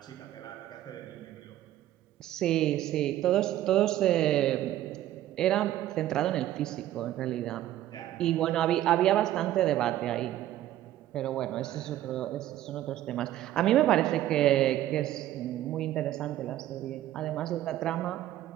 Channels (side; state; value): left; quieter; 13.5 dB